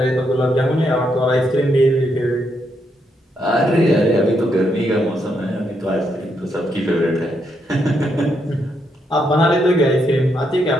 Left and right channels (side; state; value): both; normal; correlation 0.78